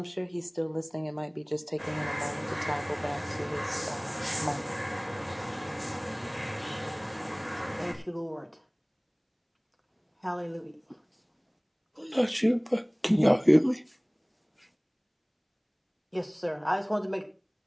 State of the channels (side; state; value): both; identical; correlation 1.00